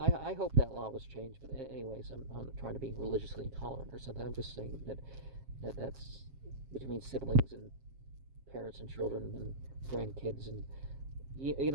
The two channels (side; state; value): left; late; 7.4 ms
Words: I hope that law was changed. But anyways, I'm not trying to be religiously intolerant or something. I'm just saying that's between siblings and parents and children and grandkids, and you